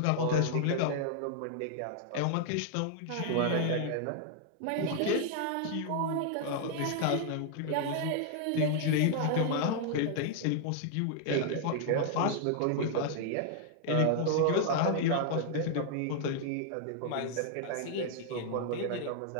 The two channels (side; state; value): both; different; correlation 0.00